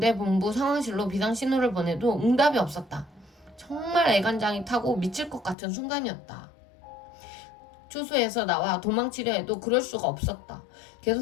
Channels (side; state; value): right; drops out; at 5.6 s